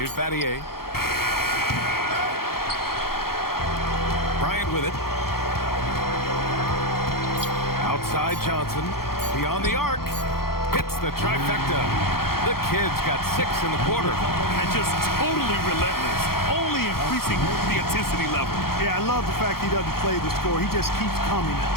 Battier. Bryant with it. Outside Johnson. Beyond the arc. Hits the trifecta. The Kids got 6 in the quarter. And just totally relentless. Only increasing the intensity level. Yeah, I love the fact he doesn't play the score. He just keeps coming,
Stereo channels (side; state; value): right; late; 0.94 ms